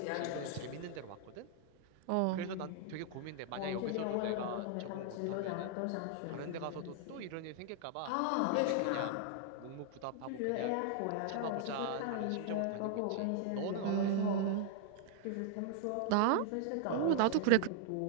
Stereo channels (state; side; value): different; both; correlation -0.01